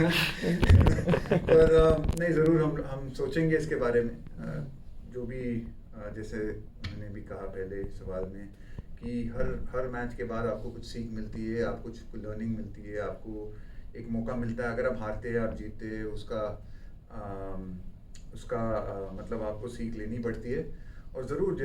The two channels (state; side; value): identical; both; correlation 1.00